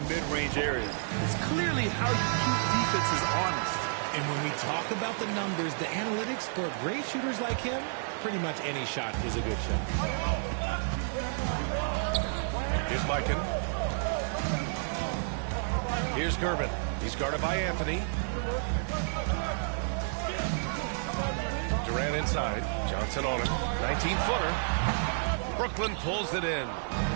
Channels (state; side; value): silent; left; 57 dB below the other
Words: mid-range area. It's clearly how you keep defenses honest. And when we talk about the numbers, the analytics for great shooters like him, pretty much any shot is a good shot. Here's Mikan. Here's Gervin. He's guarded by Anthony. Durant inside. Johnson on him. 19-footer. Brooklyn pulls it in.